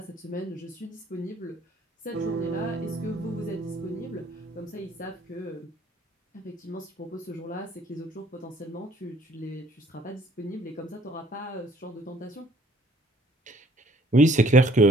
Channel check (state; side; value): normal; both; correlation 0.59